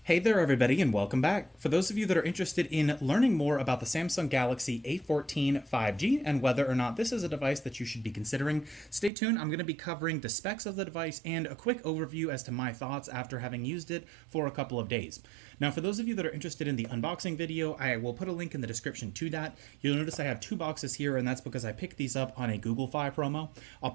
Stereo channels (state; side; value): drops out; left; at 9.1 s